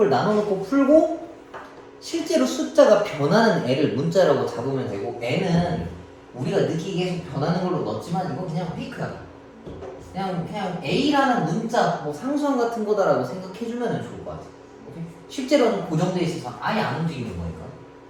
나눠놓고 풀고 실제로 숫자가 변하는 애를 문자라고 잡으면 되고 n은 우리가 느끼기에 계속 변하는 걸로 넣었지만 이건 그냥 페이크야. 그냥 a라는 문자 뭐 상수함 같은 거다라고 생각해주면 좋을 것 같아. 오케이? 실제로는 고정돼 있어서 아예 안 움직이는 거니까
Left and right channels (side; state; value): both; identical; correlation 1.00